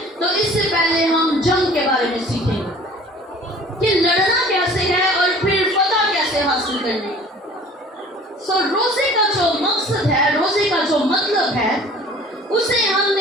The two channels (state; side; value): normal; both; correlation 0.48